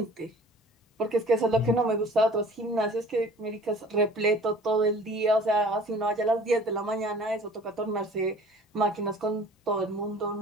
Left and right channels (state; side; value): normal; both; correlation 0.48